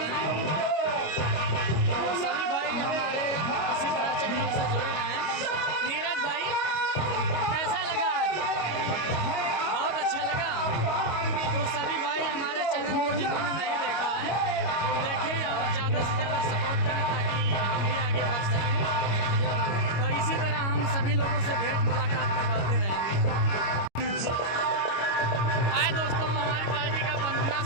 तो सभी भाई हमारे इसी तरह चैनल से जुड़े रहें। नीरज भाई कैसा लगा आज? बहुत अच्छा लगा। तो सभी भाई हमारे चैनल को जिन्होंने नहीं देखा है वो देखें और ज़्यादा से ज़्यादा सपोर्ट करें ताकि हम भी आगे बढ़ सकें। तो इसी तरह हम सभी लोगों से भेंट मुलाकात करवाते रहेंगे। हाय दोस्तों, हमारी पार्टी का वंदना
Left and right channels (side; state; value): right; late; 25 ms